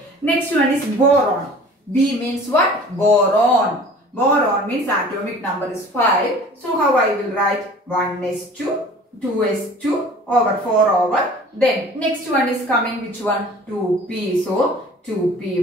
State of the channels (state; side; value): normal; both; correlation 0.46